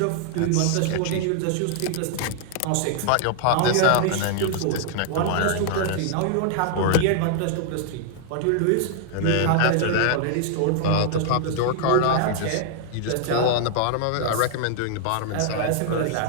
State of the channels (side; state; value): both; different; correlation -0.01